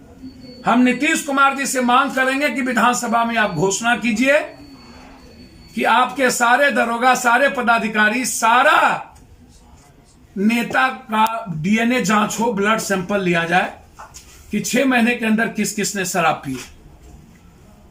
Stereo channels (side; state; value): both; identical; correlation 1.00